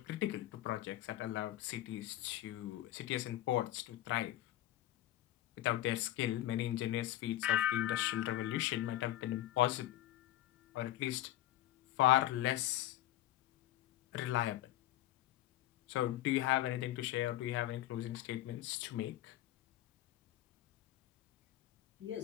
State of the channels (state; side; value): quieter; right; 14.3 dB